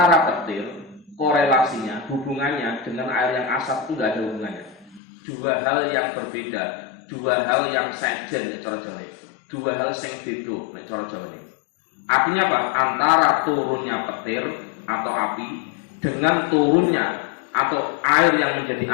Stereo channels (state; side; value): drops out; right; at 5.0 s